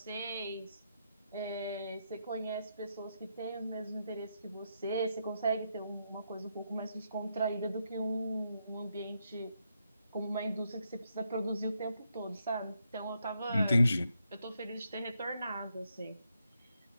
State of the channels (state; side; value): inverted; both; correlation -0.79